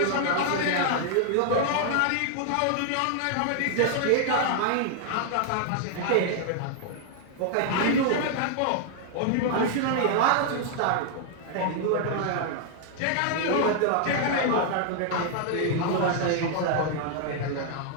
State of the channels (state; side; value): different; both; correlation 0.00